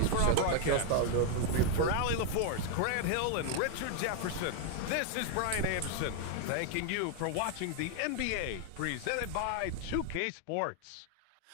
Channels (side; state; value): both; different; correlation 0.00